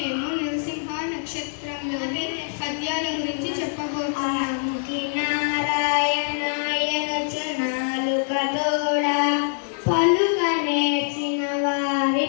నరసింహ నక్షత్రంలోని పద్యాల గురించి చెప్పబోతున్నాము. పలుక నేర్చిన వారి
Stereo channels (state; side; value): silent; right; digital silence